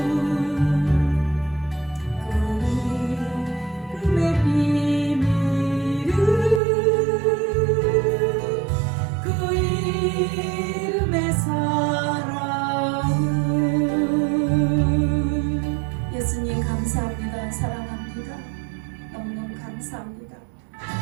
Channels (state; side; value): drops out; left; at 6.6 s